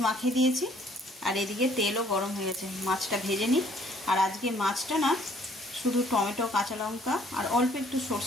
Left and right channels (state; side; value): normal; both; correlation 0.61